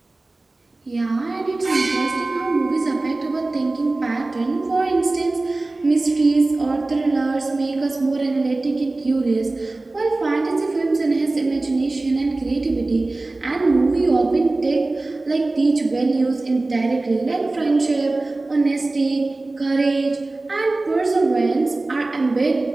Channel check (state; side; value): quieter; left; 3.1 dB